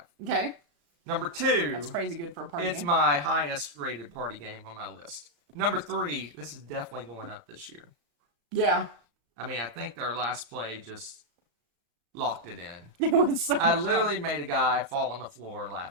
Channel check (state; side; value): late; left; 35 ms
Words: Okay. Number 2. That's crazy good for a party It's game. my highest rated party game on my list. Number 3. This is definitely going up this year. Yeah. I mean, I think our last play just locked it in. It was so I much literally made a guy fall on the floor